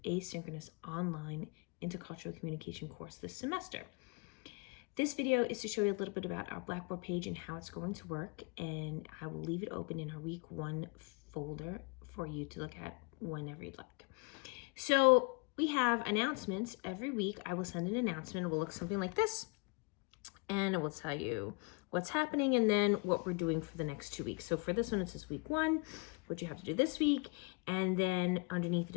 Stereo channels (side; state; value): right; quieter; 31.0 dB